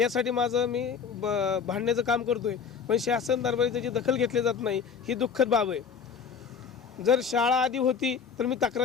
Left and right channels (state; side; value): quieter; right; 6.4 dB